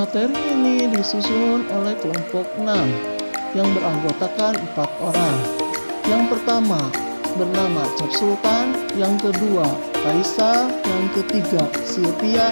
ini disusun oleh kelompok 6 yang beranggotakan 4 orang. Yang pertama bernama Cap Sultan, yang kedua Kaisa, yang ketiga Sylvia,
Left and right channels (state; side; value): inverted; both; correlation -1.00